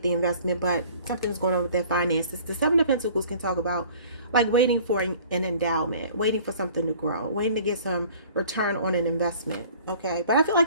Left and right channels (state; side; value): inverted; both; correlation -0.50